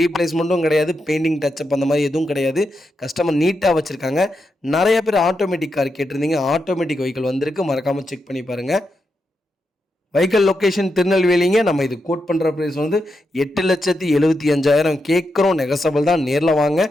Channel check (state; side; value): normal; both; correlation 0.85